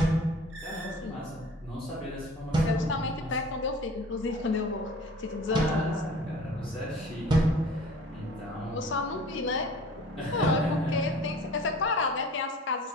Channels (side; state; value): both; normal; correlation 0.45